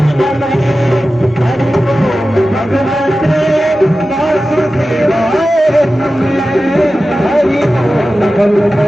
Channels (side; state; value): both; normal; correlation 0.94